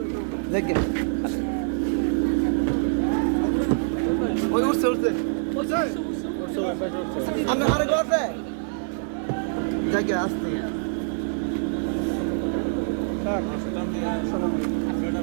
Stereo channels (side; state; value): left; silent; digital silence